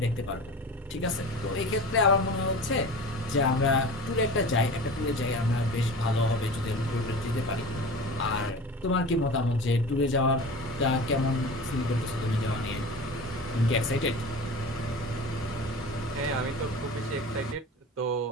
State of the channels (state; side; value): normal; both; correlation 0.35